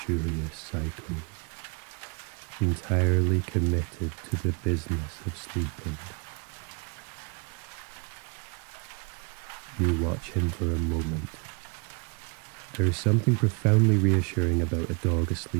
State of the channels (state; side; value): quieter; left; 33.0 dB